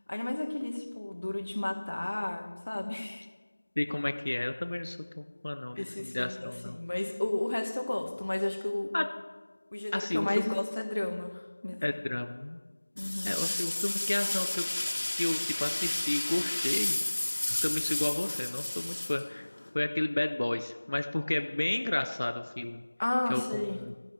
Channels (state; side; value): inverted; both; correlation -1.00